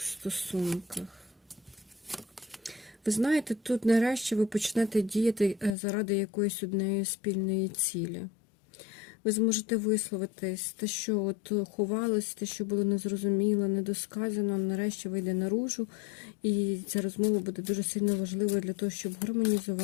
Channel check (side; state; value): right; drops out; at 5.8 s